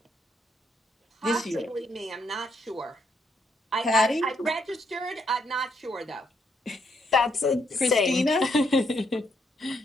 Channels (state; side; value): normal; both; correlation 0.75